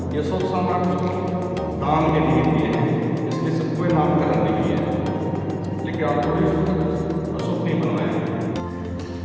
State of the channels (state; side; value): identical; both; correlation 1.00